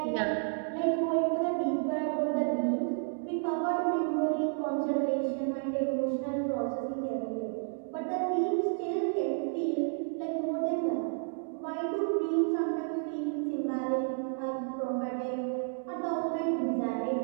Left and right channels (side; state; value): left; silent; 57 dB below the other